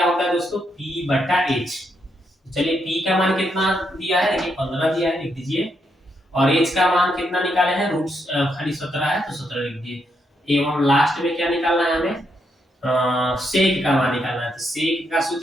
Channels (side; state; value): both; normal; correlation 0.79